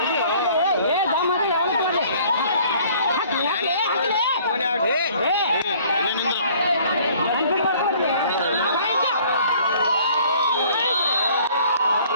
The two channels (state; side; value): inverted; both; correlation -0.55